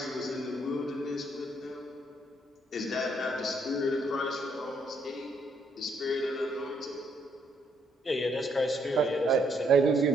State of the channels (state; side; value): normal; both; correlation 0.71